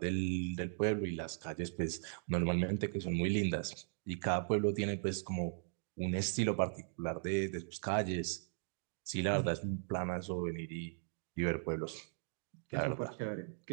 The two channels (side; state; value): left; silent; digital silence